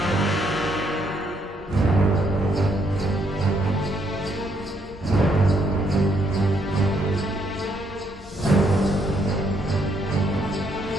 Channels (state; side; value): normal; both; correlation 0.72